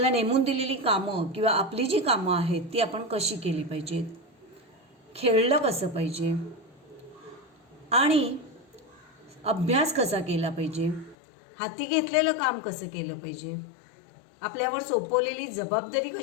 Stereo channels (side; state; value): right; drops out; at 11.2 s